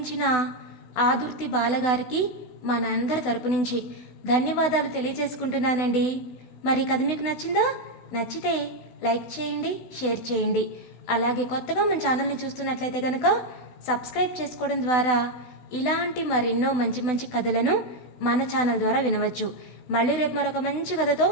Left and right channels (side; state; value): right; late; 16 ms